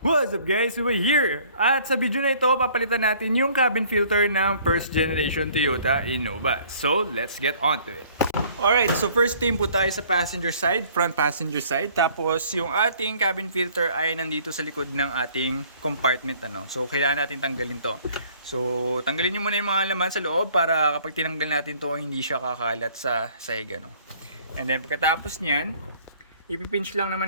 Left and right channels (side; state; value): both; inverted; correlation -0.56